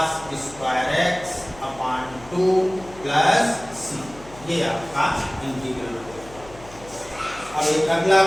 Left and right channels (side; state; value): left; noise; hum, 20 dB below the sound